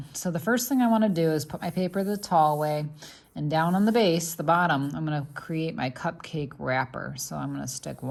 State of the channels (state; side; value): identical; both; correlation 1.00